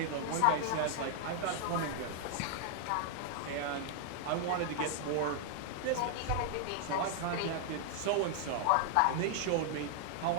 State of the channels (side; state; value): both; different; correlation 0.00